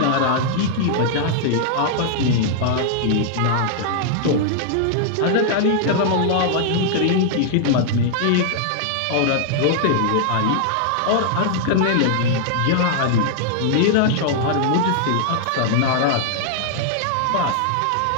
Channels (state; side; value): different; both; correlation -0.01